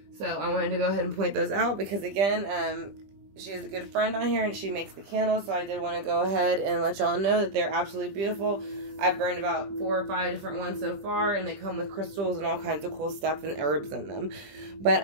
So I wanted to go ahead and point those out because, again, she is a good friend on here and she makes the candles, so I did want to go ahead and let y'all know that they're absolutely beautiful. I've burned about 4 or 5 different ones so far, and they come with crystals and all kinds of cool stuff and herbs in them. But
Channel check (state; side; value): late; left; 20 ms